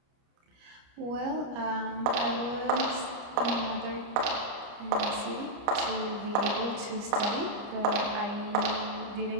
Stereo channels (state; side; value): late; left; 29 ms